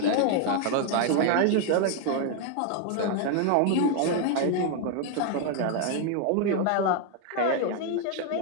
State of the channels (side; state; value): both; different; correlation 0.00